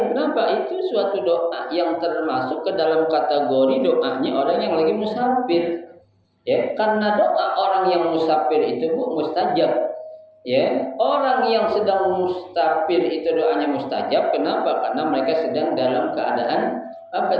Kenapa? Itu suatu doa yang termasuk ke dalam kategori doanya orang yang lagi musafir. Ya, karena doa orang yang musafir itu, Bu, mustajab. Ya, orang yang sedang musafir itu doanya mustajab. Kenapa? Karena mereka sedang dalam keadaan apa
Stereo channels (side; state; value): both; identical; correlation 1.00